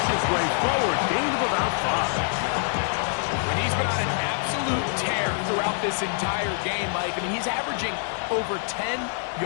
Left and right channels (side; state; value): right; silent; 61 dB below the other